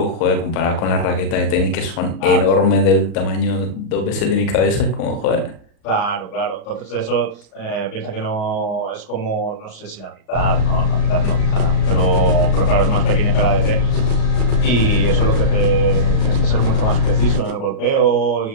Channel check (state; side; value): late; right; 37 ms